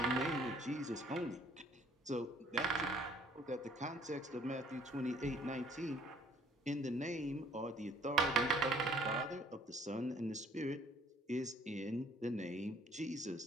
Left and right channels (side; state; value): both; normal; correlation 0.59